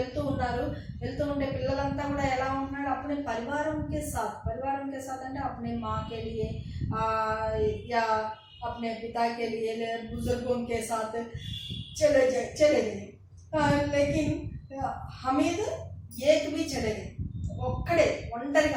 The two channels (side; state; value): both; identical; correlation 1.00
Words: ఉన్నారు। వెళ్తూ ఉండే పిల్లలంతా కూడా ఎలా ఉంటున్నాడు? अपने परिवारों के साथ అంటే अपने माँ के लिए या अपने पिता के लिए बुजुर्गों के साथ चले गए। लेकिन हमीद एक भी चले गए, ఒక్కడే